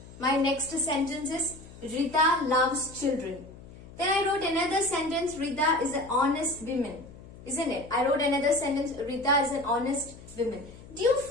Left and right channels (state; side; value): noise; left; hum, 18 dB below the sound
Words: My next sentence is, Rita loves children. Then I wrote another sentence, Rita is an honest woman. Isn't it? I wrote another sentence, Rita is an honest woman. Do you